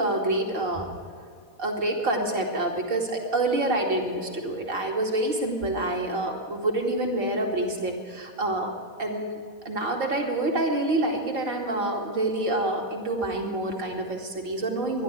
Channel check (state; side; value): late; left; 4.6 ms